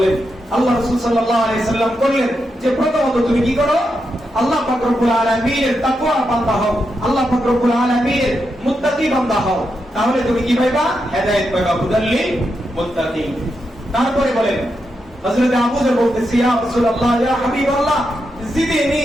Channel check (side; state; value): both; normal; correlation 0.85